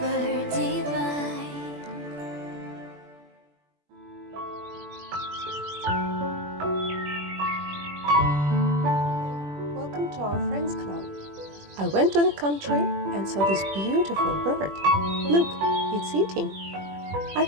divide. Welcome to our Friends Club. I went to the country and saw this beautiful bird. Look, it's eating. I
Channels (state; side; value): late; left; 21 ms